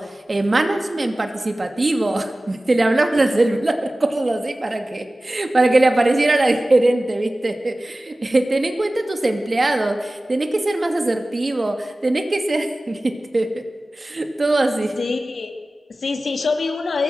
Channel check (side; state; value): both; normal; correlation 0.97